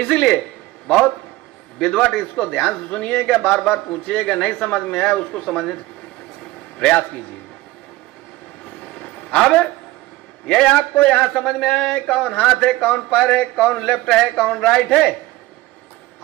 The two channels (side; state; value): left; quieter; 18.1 dB